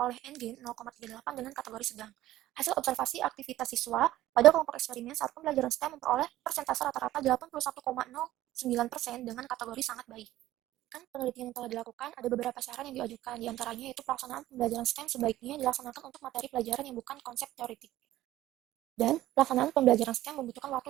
N-gain 0,38 dengan kategori sedang. Hasil observasi aktivitas siswa pada kelompok eksperimen saat pembelajaran STEM memperoleh persentase rata-rata 81,09% dengan kategori sangat baik. Penelitian yang telah dilakukan, ada beberapa saran yang diajukan, diantaranya yaitu pelaksanaan pembelajaran STEM sebaiknya dilaksanakan untuk materi pelajaran yang bukan konsep teoretik. Dan pelaksanaan pembelajaran STEM membutuhkan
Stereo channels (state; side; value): quieter; left; 14.9 dB